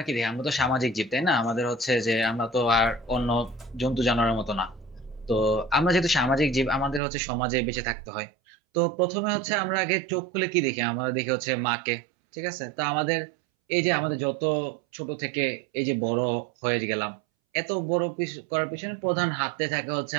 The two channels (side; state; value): left; drops out; at 7.0 s